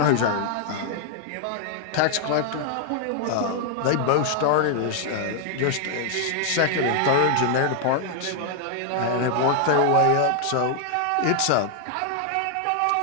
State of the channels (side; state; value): both; different; correlation 0.00